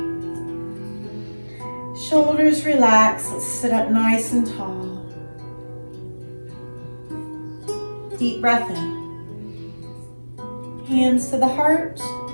Shoulders relax. Let's sit up nice and tall. Deep breath in. Hands to the heart.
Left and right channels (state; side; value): inverted; both; correlation -1.00